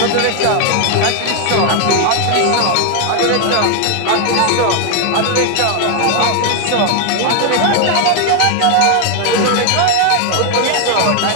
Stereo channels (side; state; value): both; different; correlation 0.01